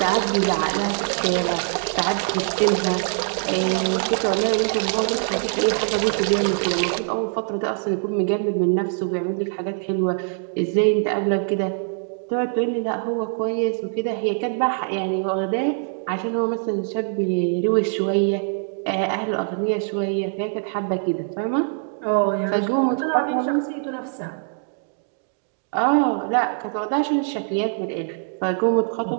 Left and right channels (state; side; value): silent; left; digital silence